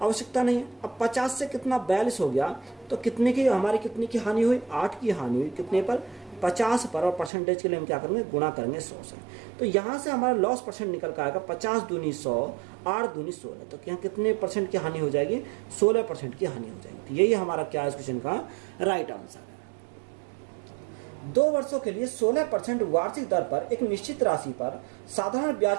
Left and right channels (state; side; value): drops out; left; at 7.3 s